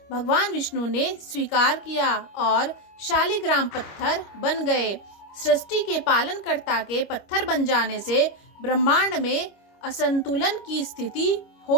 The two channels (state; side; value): late; right; 25 ms